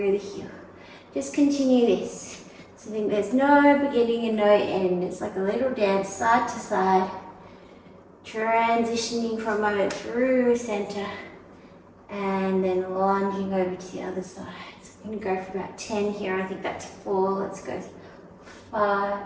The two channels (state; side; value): identical; both; correlation 1.00